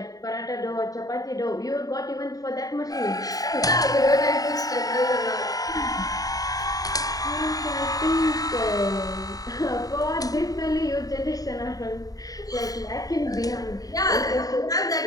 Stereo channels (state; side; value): late; right; 0.18 ms